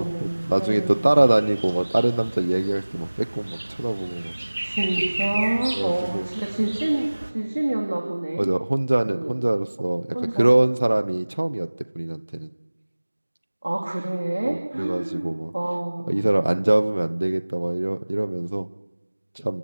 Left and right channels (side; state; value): both; inverted; correlation -1.00